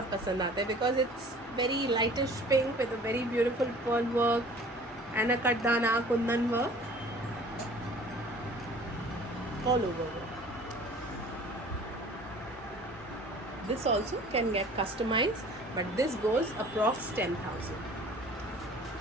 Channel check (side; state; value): both; normal; correlation 0.48